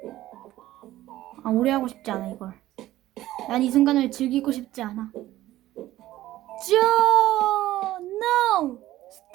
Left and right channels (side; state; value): left; quieter; 15.1 dB